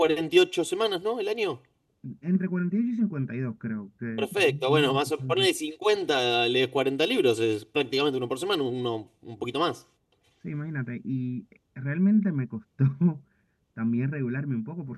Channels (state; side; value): identical; both; correlation 1.00